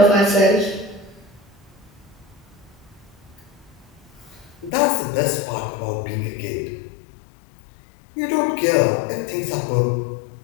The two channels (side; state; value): right; drops out; at 4.7 s